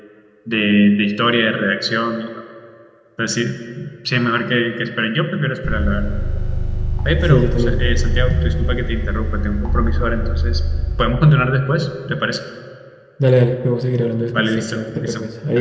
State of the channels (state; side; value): identical; both; correlation 1.00